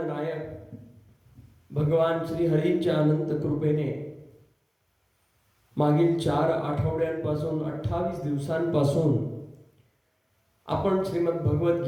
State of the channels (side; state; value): both; identical; correlation 1.00